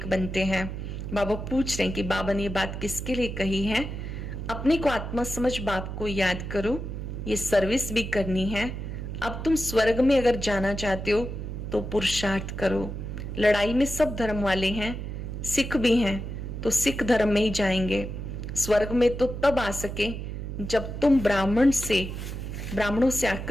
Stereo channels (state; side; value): noise; right; hum, 6 dB below the sound